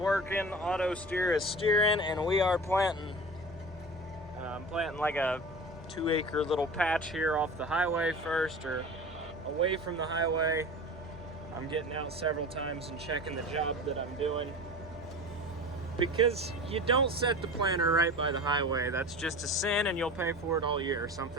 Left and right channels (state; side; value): normal; both; correlation 0.34